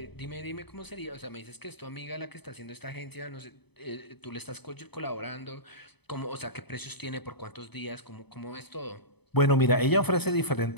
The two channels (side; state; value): right; late; 0.98 ms